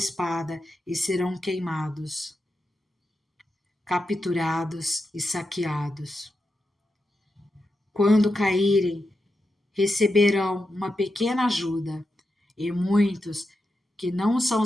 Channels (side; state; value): both; normal; correlation 0.88